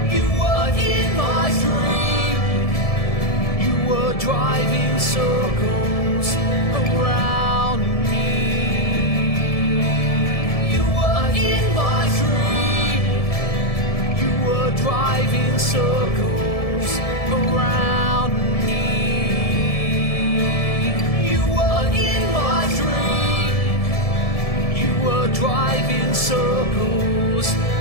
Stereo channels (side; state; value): right; late; 1.7 ms